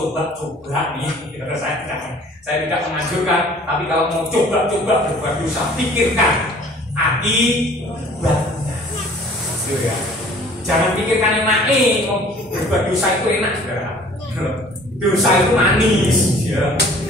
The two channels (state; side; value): normal; both; correlation 0.51